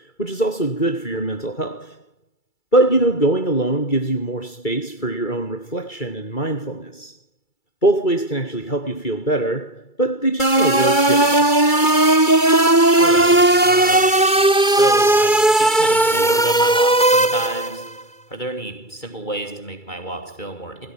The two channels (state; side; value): late; right; 2.3 ms